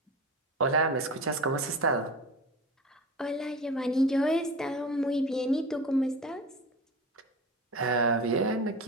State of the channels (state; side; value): normal; both; correlation 0.32